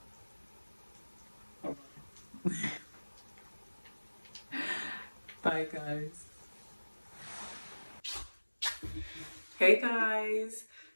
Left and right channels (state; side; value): inverted; both; correlation -1.00